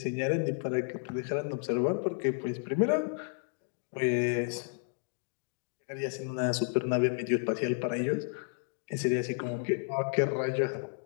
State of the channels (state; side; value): silent; right; 56 dB below the other